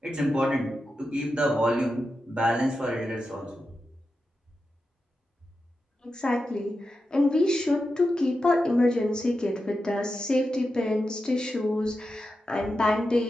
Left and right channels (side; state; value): both; normal; correlation 0.90